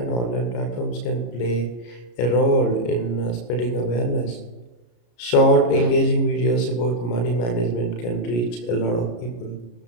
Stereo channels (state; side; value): late; right; 33 ms